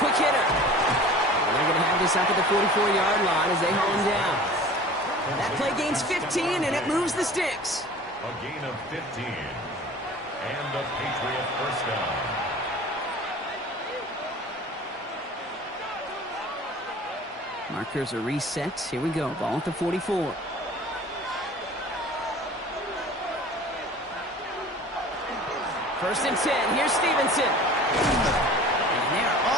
quick hitter. And they're going to have this up at the 44-yard line as they haul him down. That play gains 15, and it moves the sticks. A gain of 15. And a Patriot 1st down. Markers are reset. Here we go. Ball at the 44. First and 10. Here's Stevenson. And they're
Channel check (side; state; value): both; normal; correlation 0.43